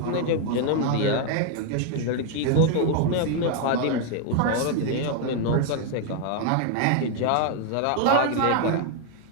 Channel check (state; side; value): different; both; correlation 0.00